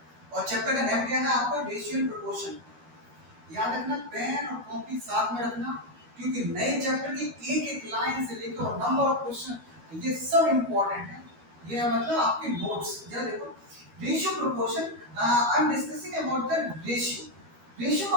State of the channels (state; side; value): late; left; 12 ms